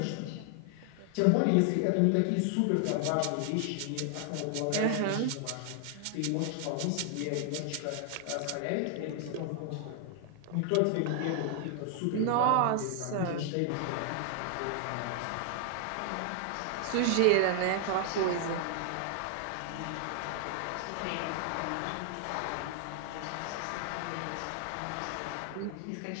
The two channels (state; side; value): different; both; correlation 0.00